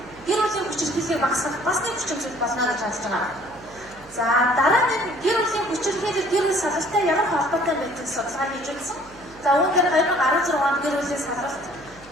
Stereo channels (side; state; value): right; noise; hum, 24 dB below the sound